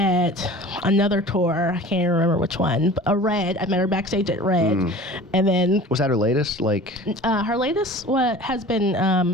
another tour. I can't even remember which one. Red. I met her backstage at Red, and then was that her latest? Her latest has been.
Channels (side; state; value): both; normal; correlation 0.41